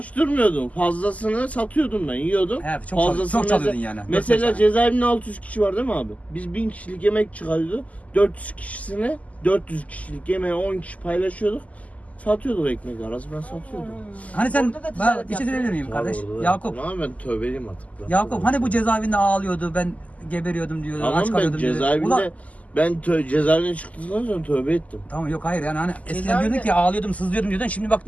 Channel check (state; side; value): late; right; 0.073 ms